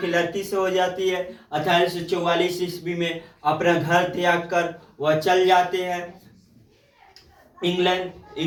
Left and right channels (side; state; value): both; identical; correlation 1.00